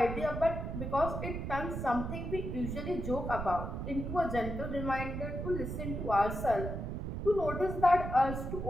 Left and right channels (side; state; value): right; noise; rumble, 4 dB below the sound